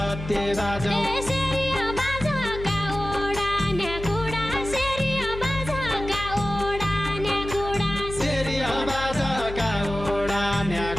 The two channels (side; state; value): left; noise; hum, 9 dB below the sound